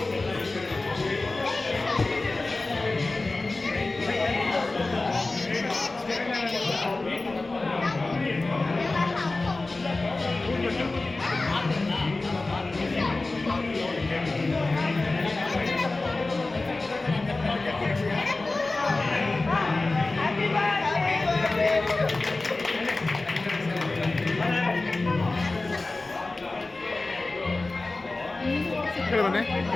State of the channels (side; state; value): right; quieter; 3.2 dB